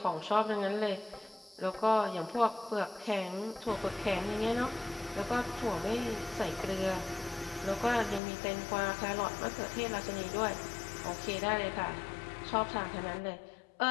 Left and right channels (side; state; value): right; drops out; at 8.2 s